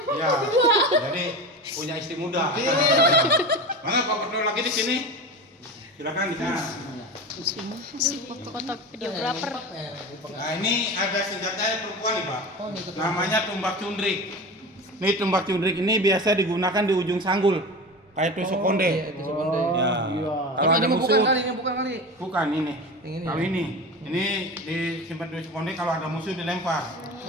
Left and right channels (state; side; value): normal; both; correlation 0.29